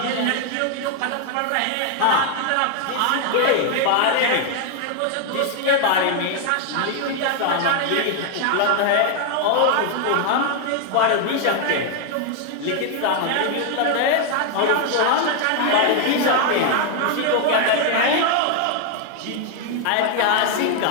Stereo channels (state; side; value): different; both; correlation 0.00